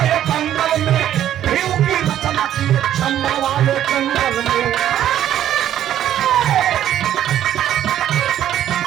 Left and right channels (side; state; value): left; quieter; 11.4 dB